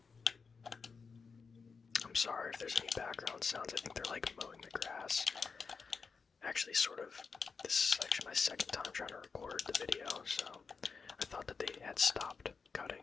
I'm sorry if there's any background sounds. I think they're like mowing the grass. Actually, sort of, this is actually my second time trying to record the video, so I thought that they had stopped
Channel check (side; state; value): right; quieter; 5.1 dB